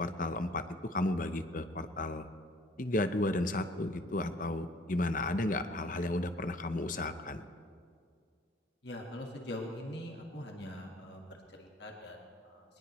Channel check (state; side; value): normal; both; correlation 0.55